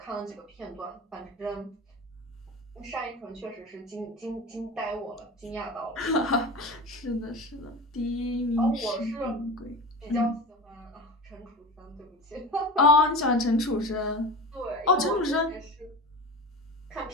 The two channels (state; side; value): normal; both; correlation 0.30